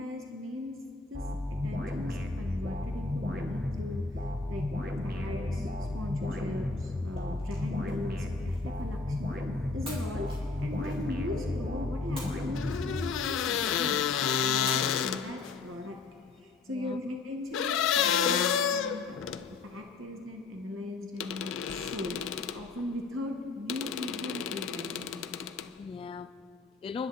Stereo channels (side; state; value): right; quieter; 4.2 dB